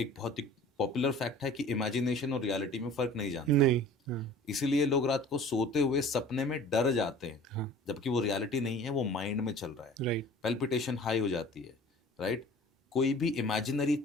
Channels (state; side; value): normal; both; correlation 0.45